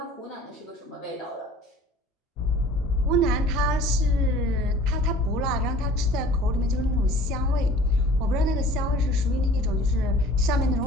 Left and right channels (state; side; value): normal; both; correlation 0.48